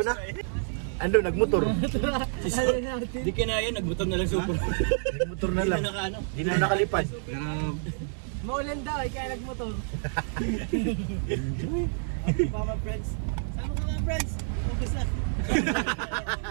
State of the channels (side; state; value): left; silent; digital silence